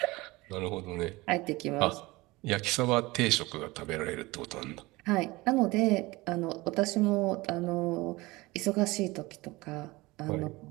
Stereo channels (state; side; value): quieter; left; 21.5 dB